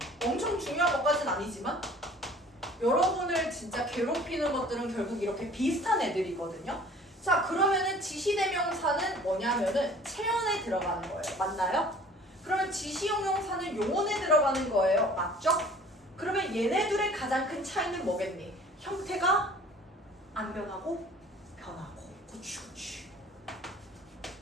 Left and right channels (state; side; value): normal; both; correlation 0.49